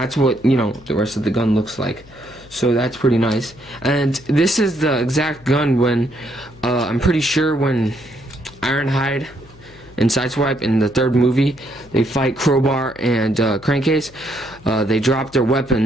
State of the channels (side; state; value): left; noise; hum, 23 dB below the sound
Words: what, you know, the rest of the gun looks like. So that's pretty nice. And this is the exact gun when, I'm pretty sure when Ironhide and Sideswipe in the third movie, they fight Crowbar and Crankcase. They drop their